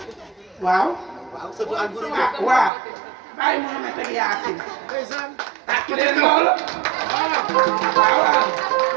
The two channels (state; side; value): drops out; left; at 2.7 s